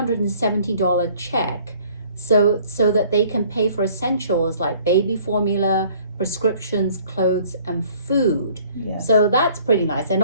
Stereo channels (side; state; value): both; inverted; correlation -0.56